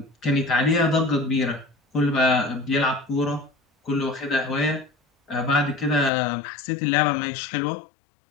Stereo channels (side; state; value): right; drops out; at 6.1 s